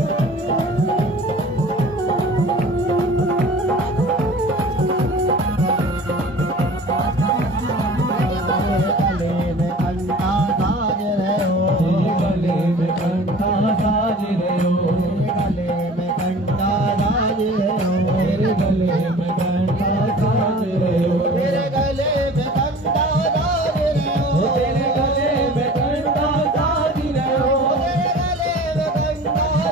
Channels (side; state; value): both; normal; correlation 0.43